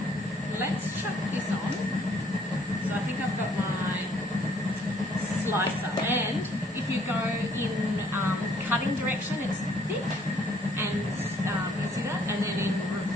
let's chuck this on. So I think I've got my slicer, and if you go in cutting direction, it's thick, and you see that, and then in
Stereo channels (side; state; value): both; normal; correlation 0.63